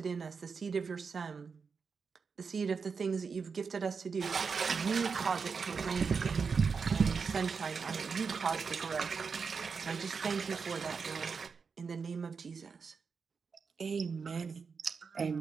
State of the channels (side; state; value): left; quieter; 5.4 dB